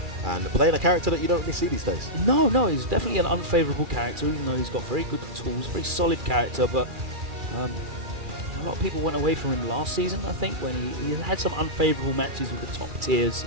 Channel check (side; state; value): left; late; 2.4 ms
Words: And playing a character that you don't really see these days. No, he's definitely an unfavourable character, even though he's got very good tools, very solid character. But a lot of people went away from him last season, I think, when he had some unfavourable matches with the top tiers.